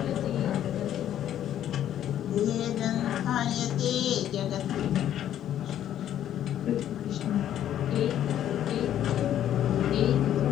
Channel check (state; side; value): quieter; right; 11.1 dB